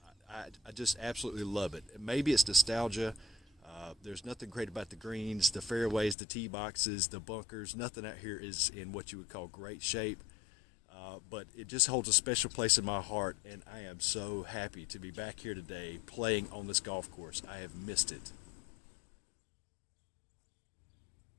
I just absolutely love it. Maybe it's nostalgia. There's nothing great about the greens, the fairways, the tee boxes, the bunkers. Nothing out here is in what you would call great shape. But it just holds a special place in my heart, and I am so happy to be back here today playing on this golf course. I have missed it.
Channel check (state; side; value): drops out; right; at 6.2 s